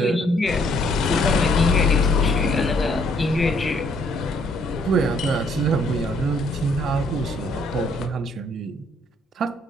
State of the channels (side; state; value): both; normal; correlation 0.66